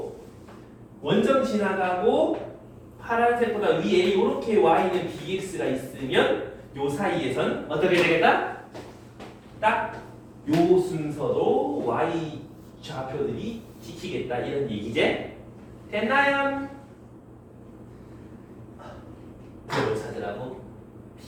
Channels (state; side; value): identical; both; correlation 1.00